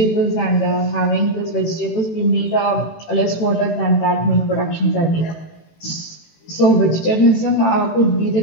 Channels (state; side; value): late; right; 18 ms